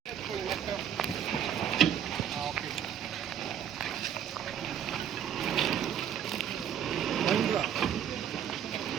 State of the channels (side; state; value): left; quieter; 9.1 dB